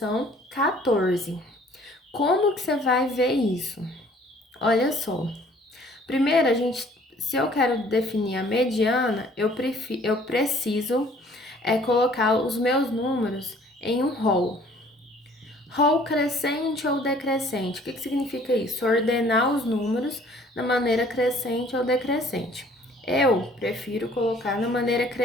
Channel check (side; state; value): both; normal; correlation 0.56